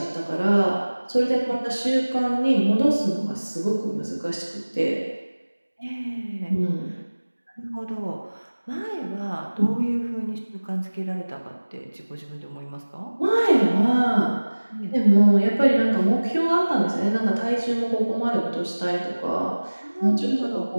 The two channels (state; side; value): inverted; both; correlation -1.00